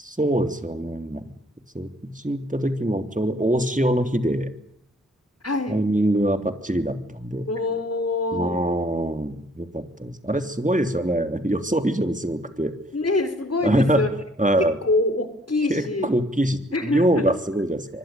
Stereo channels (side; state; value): both; normal; correlation 0.61